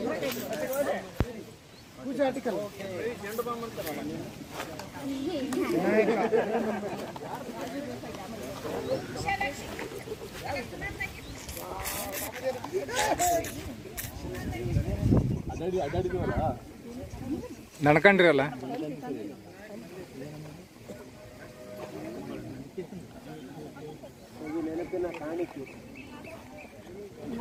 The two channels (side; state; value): both; identical; correlation 1.00